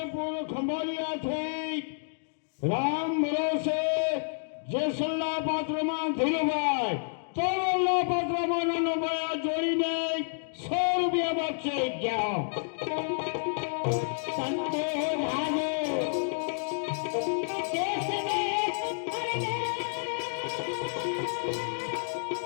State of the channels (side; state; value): right; silent; digital silence